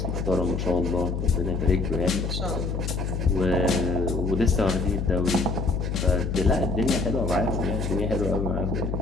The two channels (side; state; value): left; noise; hum, 2 dB below the sound